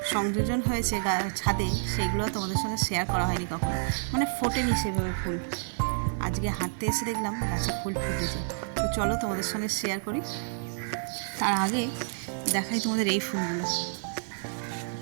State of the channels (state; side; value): silent; left; 59 dB below the other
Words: সংযোজন হয়েছে ছাদে, সেগুলো তোমাদের সঙ্গে শেয়ার করা হয়নি কখনো, মানে ফোটেনি সেভাবে ফুল। আজকে হাঁটতে এসে দেখলাম গাছে ফুল ফুটেছে। তো চলো তোমাদের সঙ্গে শেয়ার করি। তার আগে দেখাই তোমাদের এই ফুলগুলো।